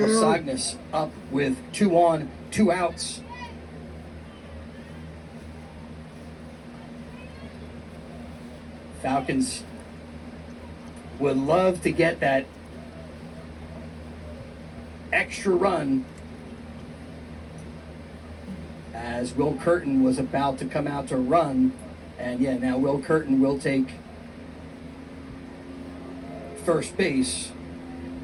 Sognas up with 2 on, 2 outs. Falcons would love to get that extra run as Will Curtin was about to come out to run. And yeah, now Will Curtin will take first base.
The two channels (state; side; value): identical; both; correlation 1.00